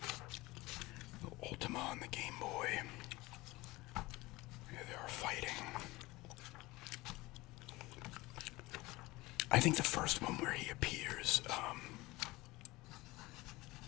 The Ultima on the Game Boy. Here they are fighting. I think the first one where he appears,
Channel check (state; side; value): quieter; right; 20.8 dB